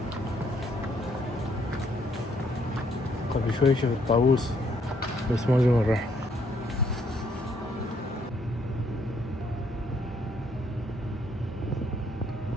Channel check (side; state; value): both; normal; correlation 0.69